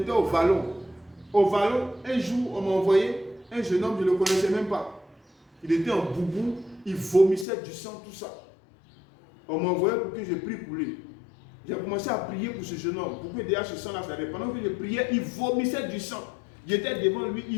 au Vallon. Au Vallon, un jour, on m'a envoyé un jeune homme, je ne le connaissais même pas. Il était en boubou, il vomissait du sang, tout ça. On m'a envoyé pour que je prie pour lui. J'ai commencé à prier pour ce jeune homme. Pourquoi déjà ce sang-là s'arrête? Pendant que je priais, il vomissait du sang. J'étais devant lui,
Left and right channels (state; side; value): drops out; right; at 7.5 s